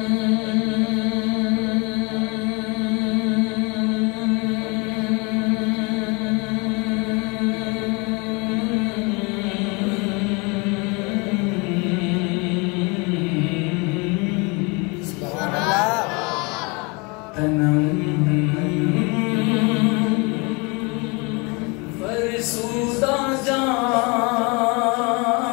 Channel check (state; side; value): quieter; right; 29.3 dB